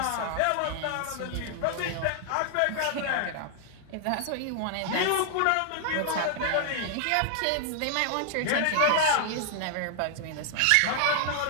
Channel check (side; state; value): both; different; correlation 0.00